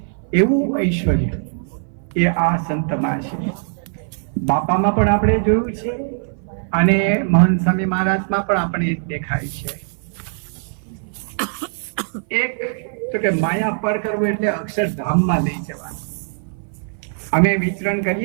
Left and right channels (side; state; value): left; silent; 58 dB below the other